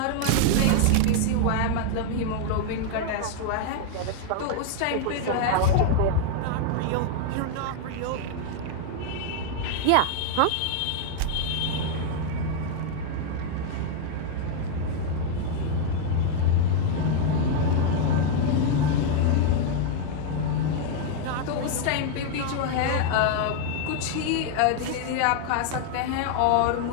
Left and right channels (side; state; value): both; different; correlation 0.00